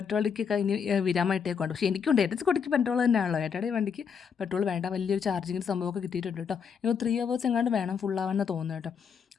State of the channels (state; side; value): quieter; right; 6.7 dB